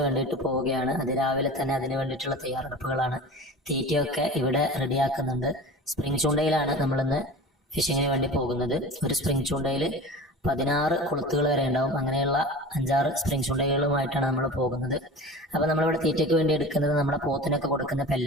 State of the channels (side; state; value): both; normal; correlation 0.35